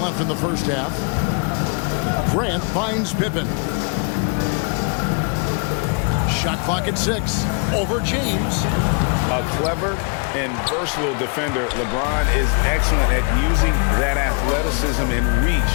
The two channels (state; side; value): quieter; right; 38.7 dB